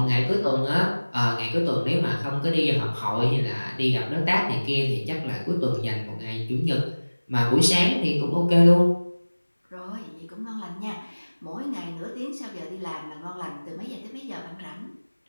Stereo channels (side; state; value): both; inverted; correlation -1.00